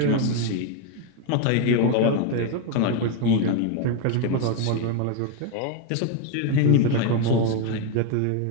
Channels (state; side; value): different; both; correlation 0.01